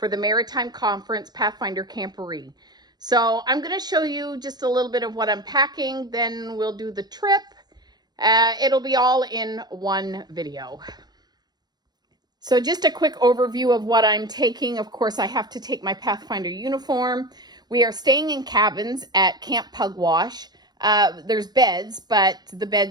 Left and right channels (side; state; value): left; late; 0.20 ms